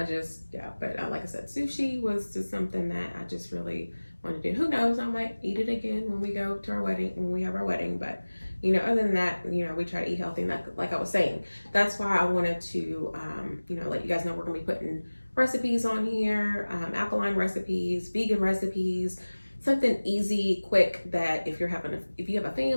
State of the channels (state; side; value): inverted; both; correlation -1.00